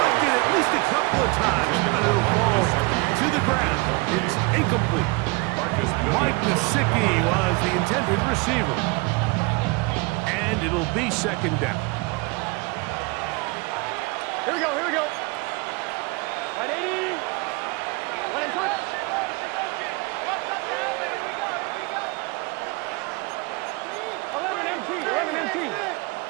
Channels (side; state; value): left; quieter; 26.8 dB